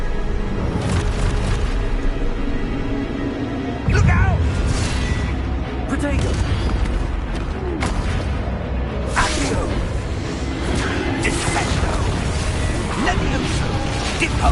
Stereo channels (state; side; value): identical; both; correlation 1.00